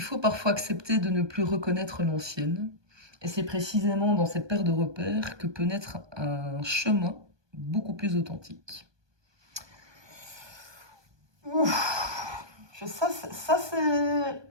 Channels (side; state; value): left; late; 1.2 ms